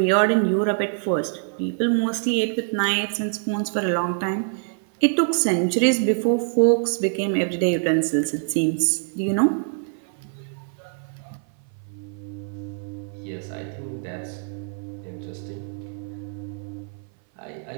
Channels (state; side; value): silent; left; 57 dB below the other